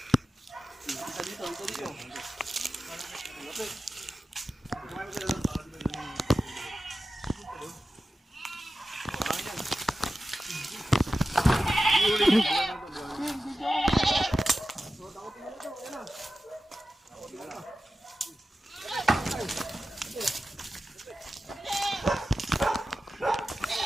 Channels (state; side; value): normal; both; correlation 0.93